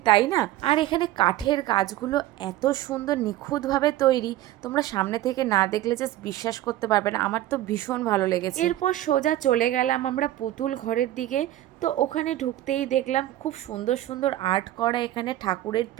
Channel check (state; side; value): quieter; left; 14.5 dB